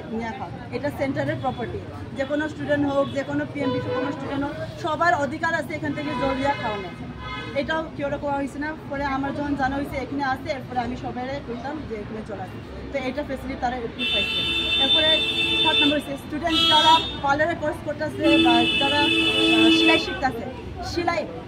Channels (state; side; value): identical; both; correlation 1.00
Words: নিয়ে খাও। এটা সেন্টারের প্রপার্টি, যে কোনো স্টুডেন্ট হোক, যে কোনো পিএমবি কোনো স্টুডেন্ট হোক, সবার অধিকার আছে এখান থেকে জল দিয়া খাওয়ানো। এটাও কেউ করা হয়েছে না। পরে আমার যখন জানা হয়েছে এখানে আসে, এরপরে আমি সবাই বলতাম যে এখানে চলে আসে। তো এটা ফেসিলিটি তারা একটু পাইছে। এরপরে 3 নম্বর হচ্ছে স্টুডেন্ট যারা পার্লারে কোর্স করতেছে বা যারা সেলাই শিখতেছে, সেলাই